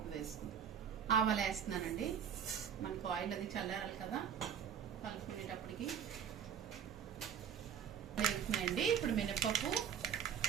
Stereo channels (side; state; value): left; quieter; 8.4 dB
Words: వేసుకుందాం. ఆవాలు వేస్తున్నానండి. మనకు ఆయిల్ అది చల్లారాలి కదా, కలుపుకునేటప్పటికి వేస్తున్నాయండి. ఇప్పుడు మినపప్పు,